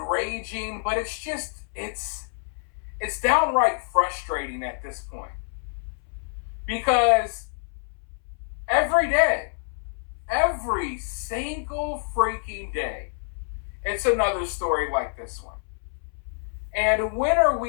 but it's downright frustrating at this point. Because every day, every single freaking day, it's another story like this one. And when are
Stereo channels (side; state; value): right; silent; 60 dB below the other